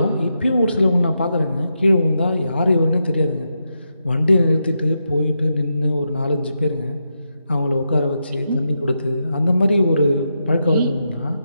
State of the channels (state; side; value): inverted; both; correlation -0.85